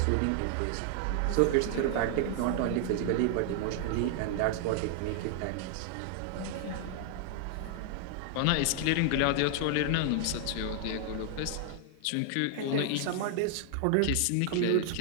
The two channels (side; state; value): both; different; correlation 0.00